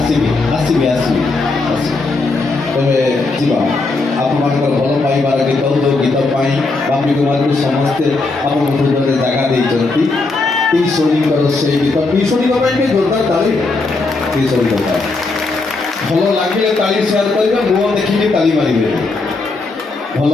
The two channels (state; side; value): quieter; right; 3.5 dB